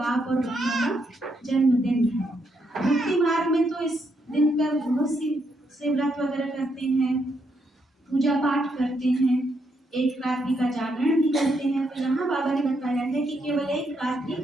और बच्चों का जन्मदिन है। भक्ति मार्ग में तो इस दिन पर बहुत सी व्रत वगैरह करते हैं, पूजा पाठ करते हैं, एक रात्रि का जागरण भी करते हैं। तो यहाँ बाबा ने बताया है कि केवल एक रात्रि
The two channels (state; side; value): normal; both; correlation 0.78